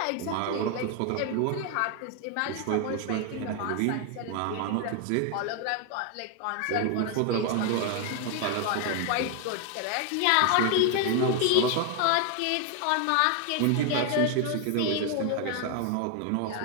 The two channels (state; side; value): different; both; correlation 0.01